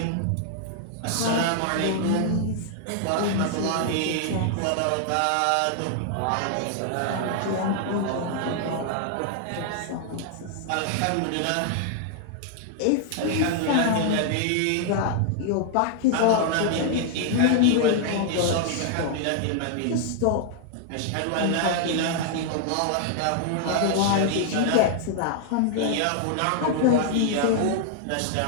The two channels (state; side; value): different; both; correlation 0.00